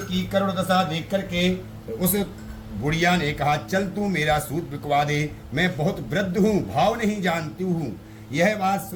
की करुण दशा देख करके उस बुढ़िया ने कहा, चल तू मेरा सूत बिकवा दे, मैं बहुत वृद्ध हूँ, भाव नहीं जानती हूँ। यह बात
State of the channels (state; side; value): identical; both; correlation 1.00